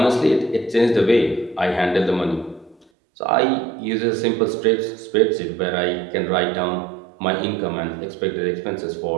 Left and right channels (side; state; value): left; drops out; at 2.9 s